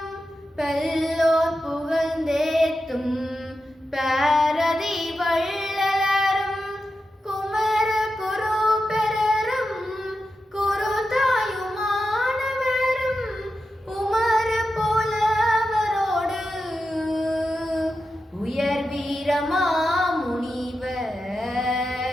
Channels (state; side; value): normal; both; correlation 0.90